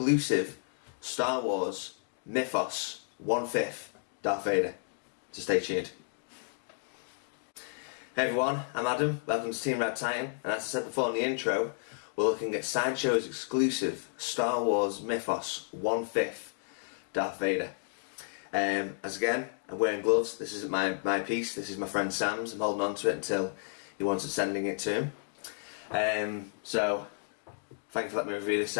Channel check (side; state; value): right; silent; digital silence